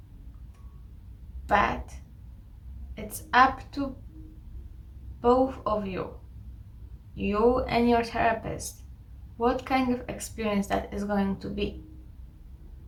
but it's up to both of you and your therapist, what kind of experience that is going to be.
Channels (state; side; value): identical; both; correlation 1.00